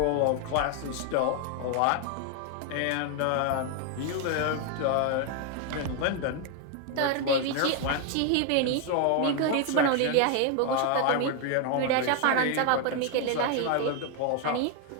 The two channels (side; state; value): both; different; correlation 0.00